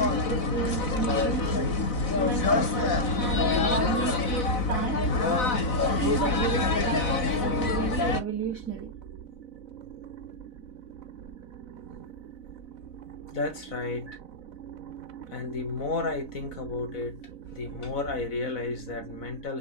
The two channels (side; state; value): right; late; 4.0 ms